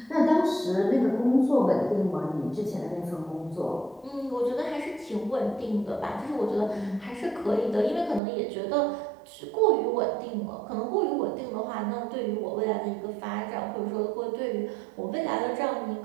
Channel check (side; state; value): left; drops out; at 8.2 s